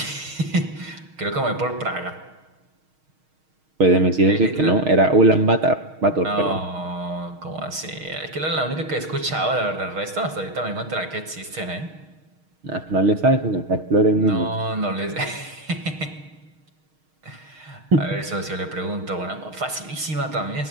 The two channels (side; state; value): left; late; 6.4 ms